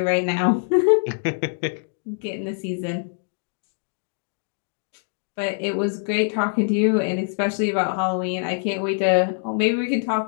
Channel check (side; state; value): right; silent; 61 dB below the other